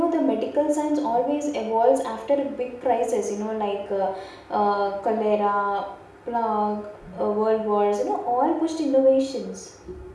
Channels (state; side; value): identical; both; correlation 1.00